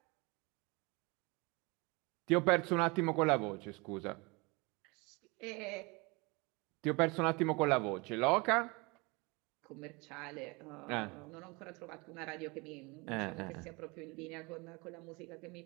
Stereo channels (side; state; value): left; quieter; 27.1 dB